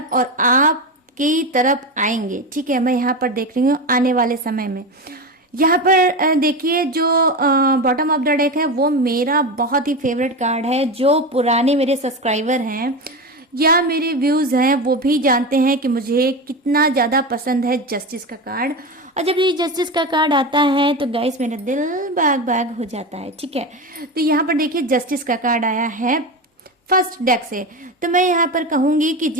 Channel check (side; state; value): both; normal; correlation 0.21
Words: और आपकी तरफ आएंगे, ठीक है। मैं यहाँ पर देख रही हूँ आने वाले समय में। यहाँ पर देखिए जो बॉटम ऑफ द डेक है वो मेरा बहुत ही फेवरेट कार्ड है। जो पुराने मेरे सब्सक्राइबर हैं या मेरे व्यूज हैं वो भी जानते हैं कि मुझे कितना ज्यादा पसंद है जस्टिस का कार्ड। और जब ये जस्टिस का कार्ड आता है तो गाइस मेरा दिल बाग बाग हो जाता है, ठीक है। तो यहाँ पर देखिए जस्टिस का कार्ड आया है फर्स्ट डेक से। तो मैं यहाँ पर कहूंगी कि